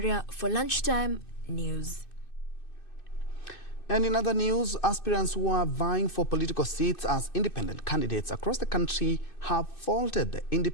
for Lunchtime News. And in other news, aspirants who are vying for political seats as independent candidates across the country have faulted the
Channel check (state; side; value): late; right; 2.6 ms